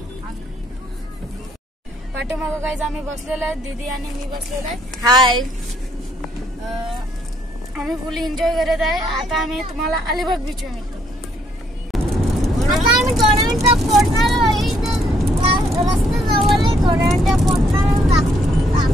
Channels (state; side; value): normal; both; correlation 0.69